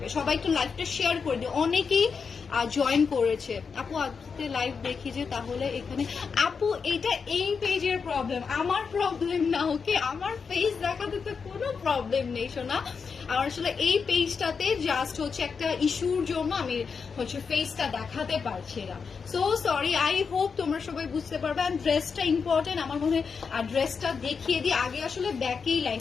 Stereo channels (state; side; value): quieter; right; 5.6 dB